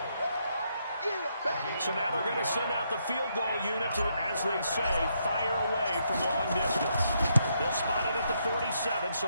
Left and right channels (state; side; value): inverted; both; correlation -0.76